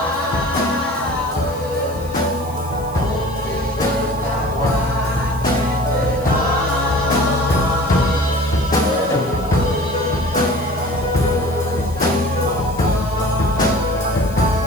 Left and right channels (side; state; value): left; noise; hiss, 21 dB below the sound